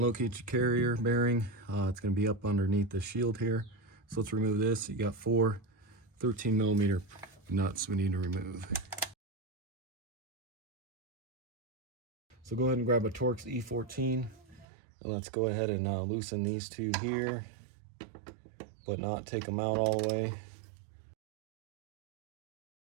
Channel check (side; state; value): left; drops out; at 14.7 s